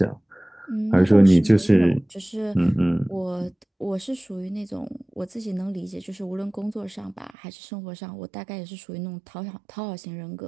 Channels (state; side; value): drops out; left; at 7.3 s